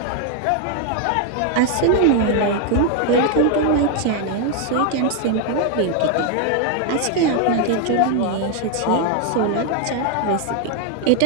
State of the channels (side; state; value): both; different; correlation 0.01